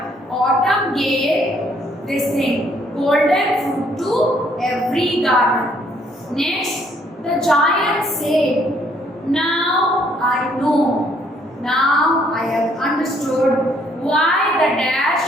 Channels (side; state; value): both; normal; correlation 0.66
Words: autumn gave this thing, golden fruit to every garden. Next, the giant said, now I know. Now I have understood why the